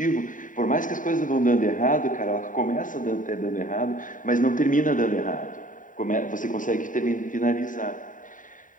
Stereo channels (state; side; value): late; right; 0.38 ms